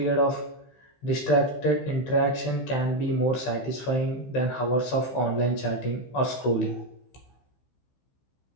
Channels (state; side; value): late; right; 15 ms